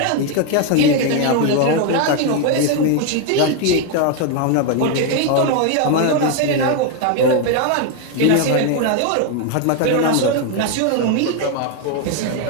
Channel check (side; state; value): both; different; correlation 0.01